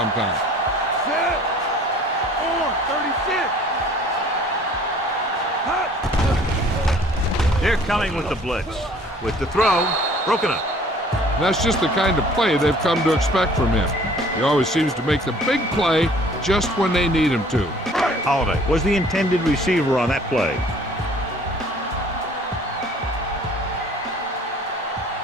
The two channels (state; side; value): normal; both; correlation 0.53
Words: Set. On. 36. They're coming with the blitz. With the throw, broken up. That's just the kind of play they've come to expect from him. He always seems to make the big play just when they need him to. Holiday was the intended receiver on that play.